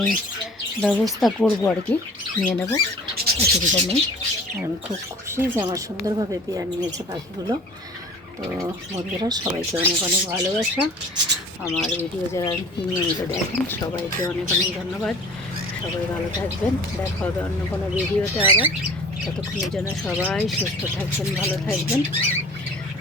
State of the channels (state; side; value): normal; both; correlation 0.44